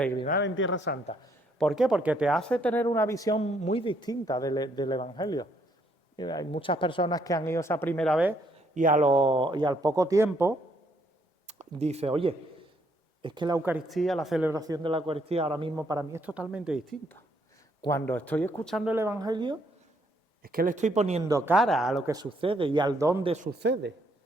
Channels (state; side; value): normal; both; correlation 0.70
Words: en Tierra Santa. ¿Por qué? Porque te hace tener una visión muy distinta del Evangelio. Hay muchas personas que han ido esa primera vez y al poco tiempo dice, oye, es que la Eucaristía, la celebración de la Eucaristía ahora mismo para mí es totalmente distinta. Cuando estoy escuchando el Evangelio, es que le estoy poniendo cara a lo que sucede y al dónde sucede.